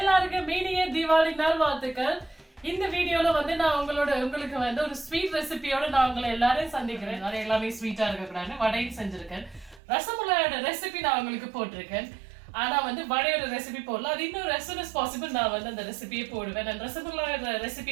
மீனிய தீபாவளி நாள் வாழ்த்துக்கள். இந்த வீடியோல வந்து நான் உங்களுக்கு வந்து ஒரு ஸ்வீட் ரெசிபியோட நான் உங்களை எல்லாரையும் சந்திக்கிறேன். எல்லாமே ஸ்வீட்டா இருக்கக்கூடாது. வடையும் செஞ்சிருக்கேன். ரசமலாயோட ரெசிபி நான் உங்களுக்கு போட்டிருக்கேன். ஆனா வந்து வடையோட ரெசிபி போடல. அது இன்னும் as soon as possible நான் வந்து அந்த ரெசிபியை போடுவேன். அந்த ரசமலாயோட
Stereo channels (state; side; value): drops out; left; at 9.8 s